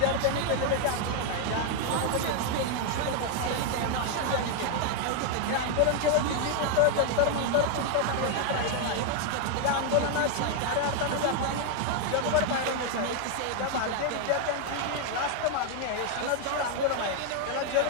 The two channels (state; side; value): different; both; correlation 0.00